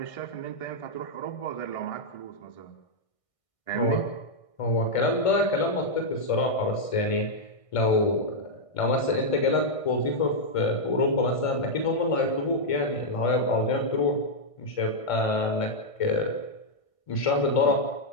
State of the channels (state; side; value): late; right; 1.6 ms